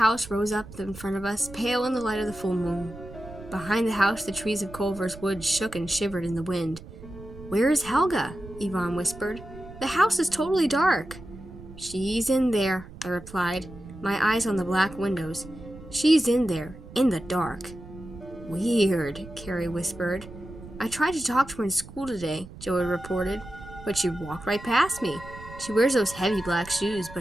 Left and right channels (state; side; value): noise; right; rumble, 16 dB below the sound